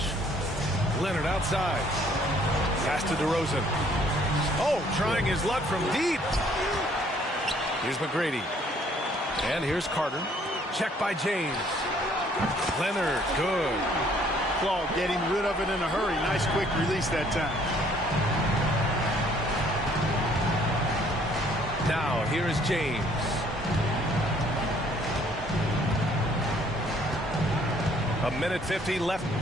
Leonard outside. Pass to DeRozan. Oh, trying his luck from deep. Here's McGrady. And here's Carter. Check by James. Leonard, good. Claw getting rid of it in a hurry. Nice quick release that time. Now, here is James. A minute 50 left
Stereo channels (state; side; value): normal; both; correlation 0.61